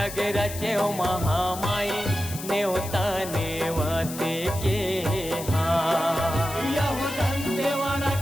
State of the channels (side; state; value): left; noise; hiss, 11 dB below the sound